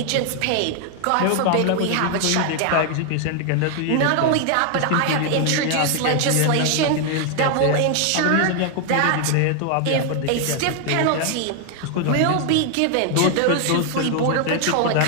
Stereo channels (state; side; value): different; both; correlation 0.00